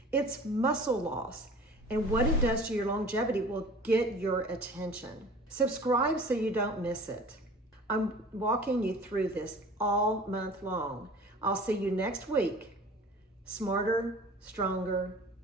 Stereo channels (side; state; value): both; normal; correlation 0.43